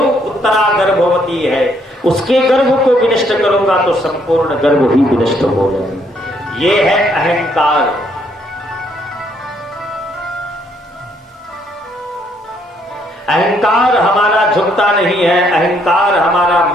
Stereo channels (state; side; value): normal; both; correlation 0.69